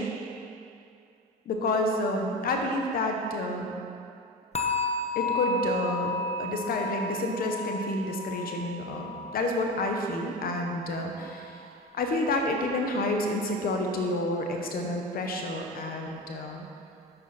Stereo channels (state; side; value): normal; both; correlation 0.25